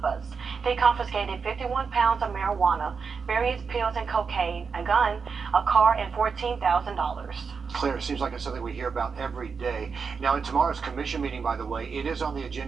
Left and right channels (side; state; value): left; quieter; 5.5 dB